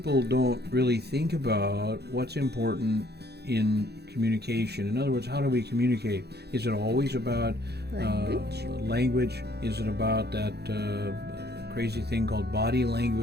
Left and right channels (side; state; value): left; late; 0.48 ms